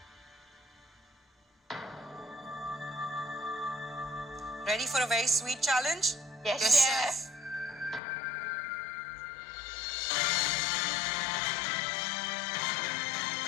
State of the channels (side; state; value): right; drops out; at 8.0 s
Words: Ready for a very sweet challenge? Yes, chef.